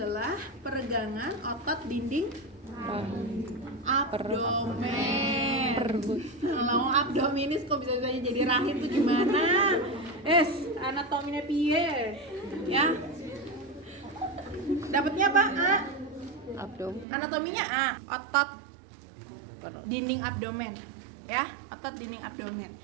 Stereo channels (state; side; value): drops out; left; at 17.1 s